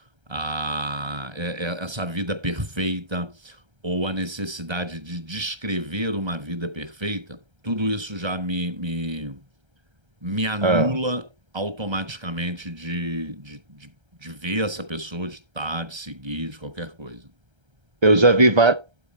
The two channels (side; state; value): left; late; 1.3 ms